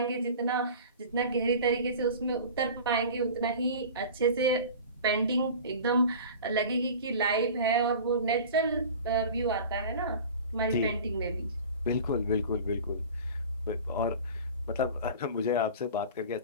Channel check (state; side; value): inverted; both; correlation -0.38